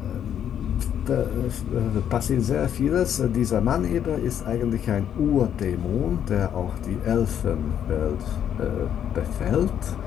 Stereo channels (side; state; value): right; quieter; 9.4 dB